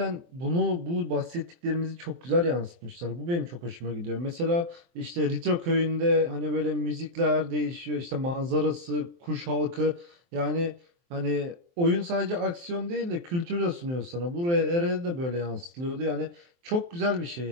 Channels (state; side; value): late; left; 23 ms